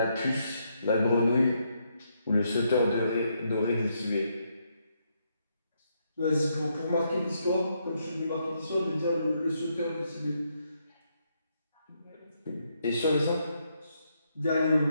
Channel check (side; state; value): both; inverted; correlation -0.77